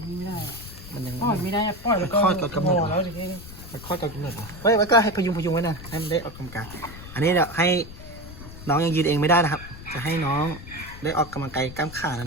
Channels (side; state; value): left; noise; rumble, 15 dB below the sound